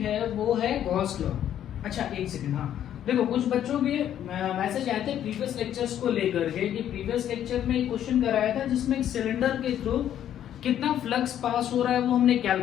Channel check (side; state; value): right; quieter; 10.7 dB